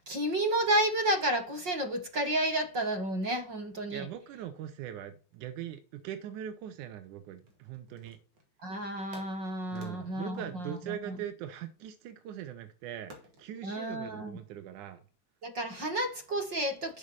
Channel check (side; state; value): left; late; 5.5 ms